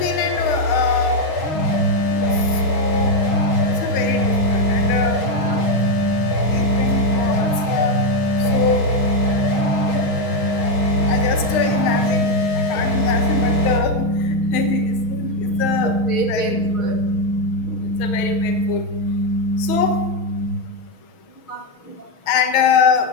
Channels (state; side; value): late; right; 6.3 ms